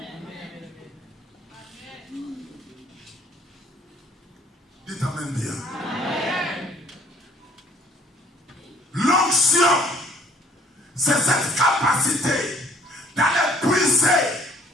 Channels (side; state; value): both; normal; correlation 0.58